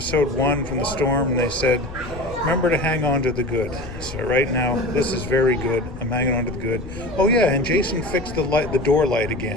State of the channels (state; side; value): noise; left; rumble, 12 dB below the sound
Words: from the storm, and they said, "Remember to hang on to the good." So right now, this is very good. I'm hanging on to the good. Oh yeah, and Jason fixed the door light